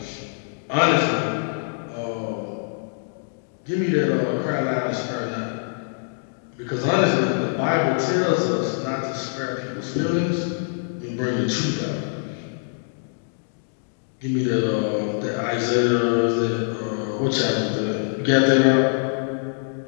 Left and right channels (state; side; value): silent; right; digital silence